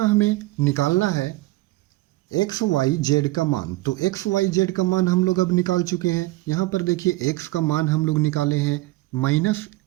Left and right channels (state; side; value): quieter; left; 19.3 dB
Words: हमें निकालना है एक्स वाई जेड का मान, तो एक्स वाई जेड का मान हम लोग अब निकाल चुके हैं। यहाँ पर देखिए एक्स का मान हम लोग निकाले हैं